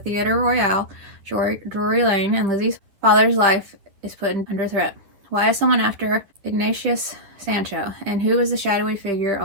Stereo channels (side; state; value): left; late; 10 ms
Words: Royal, Drury Lane, and Lizzie's father's life is put under threat. Why is someone after Ignatius Sancho, and who is the shadowy figure